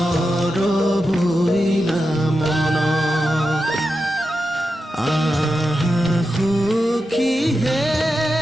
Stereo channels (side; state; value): both; normal; correlation 0.89